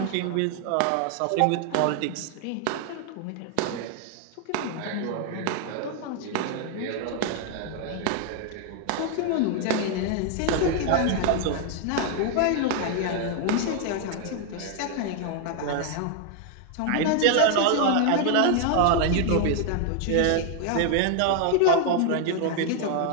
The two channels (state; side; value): different; both; correlation 0.00